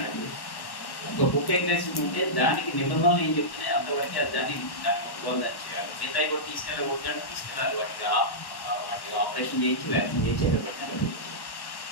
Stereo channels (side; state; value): right; late; 1.1 ms